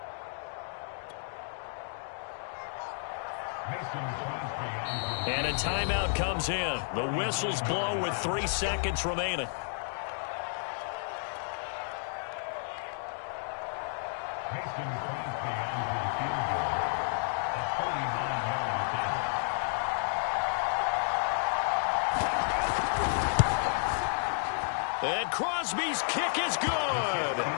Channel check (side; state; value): right; silent; digital silence